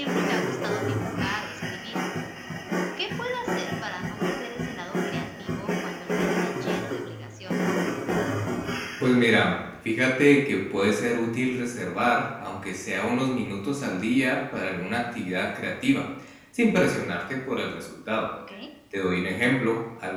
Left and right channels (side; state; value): both; identical; correlation 1.00